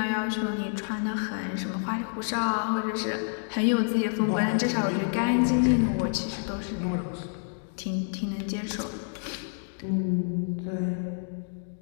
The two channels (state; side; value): silent; right; digital silence